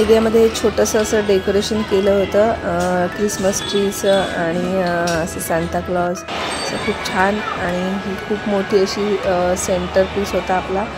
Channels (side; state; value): both; identical; correlation 1.00